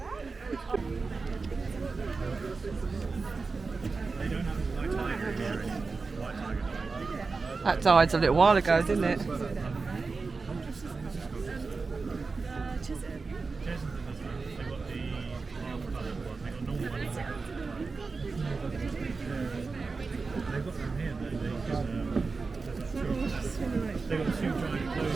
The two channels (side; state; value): left; quieter; 4.3 dB